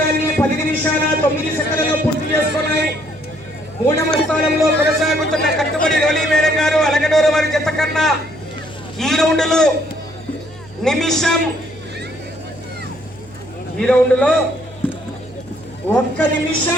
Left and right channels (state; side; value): noise; right; hum, 22 dB below the sound